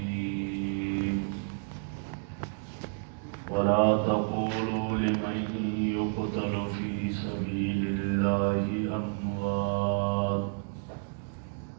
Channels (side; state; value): left; silent; 58 dB below the other